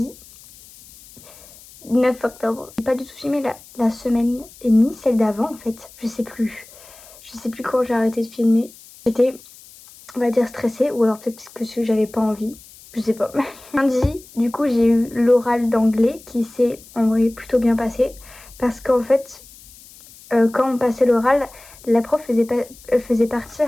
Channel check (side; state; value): left; noise; hiss, 22 dB below the sound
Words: 9 octobre. J'ai pas du tout filmé la semaine et ni celle d'avant en fait. Je sais plus. Je sais plus quand j'ai arrêté de filmer. J'étais, on va dire, stressée ou alors peut-être que j'avais pas envie. Je sais pas. Lundi, du coup, j'ai eu l'oral d'anglais qui s'est en vrai plutôt bien passé. Parce qu'en fait, quand on passait l'oral, la prof faisait